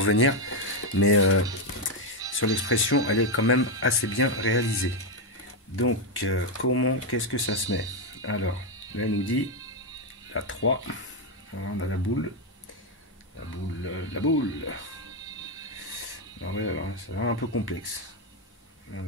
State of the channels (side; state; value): both; normal; correlation 0.04